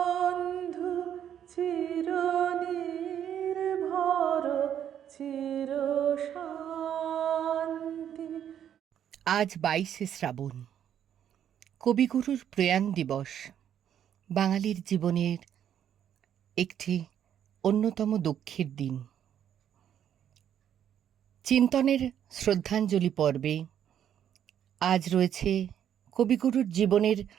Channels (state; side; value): quieter; left; 9.7 dB